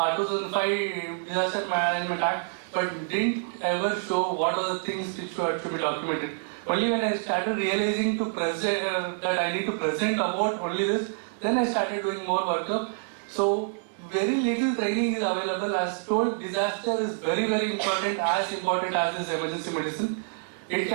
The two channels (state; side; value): silent; left; digital silence